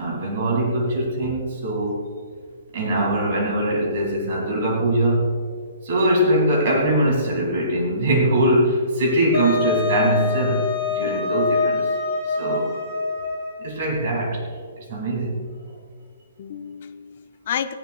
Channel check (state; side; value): inverted; both; correlation -0.50